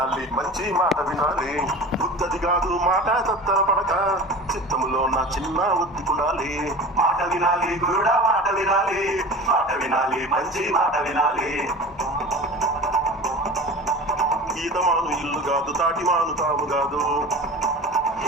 మంచి మాట వినాలి. బుద్ధది కాదు మాట తత్తర పడక, చిత్తములో నా చిన్న ఒత్తుకుండాలి. మాట వినాలి గురుడా మాట వినాలి, మాట వినాలి మంచి మాట వినాలి. ఈతమాను ఇల్లు కాదు తాటిమాను తాము కాదు,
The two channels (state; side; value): normal; both; correlation 0.35